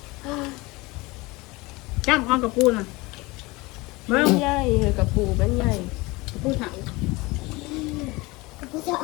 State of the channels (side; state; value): right; quieter; 23.0 dB